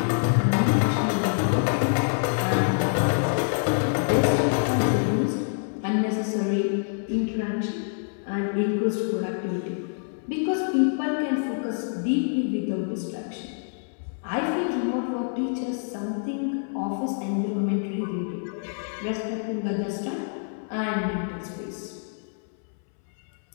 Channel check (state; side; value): silent; right; 61 dB below the other